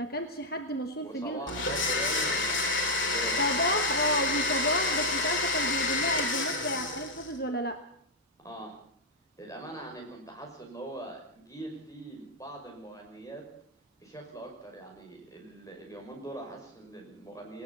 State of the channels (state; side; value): normal; both; correlation -0.02